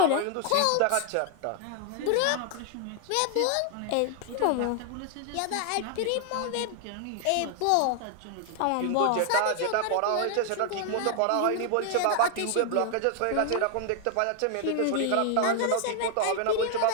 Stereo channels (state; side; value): different; both; correlation 0.00